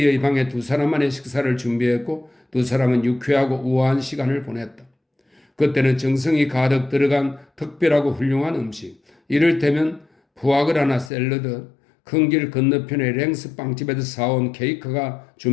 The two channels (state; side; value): drops out; right; at 11.1 s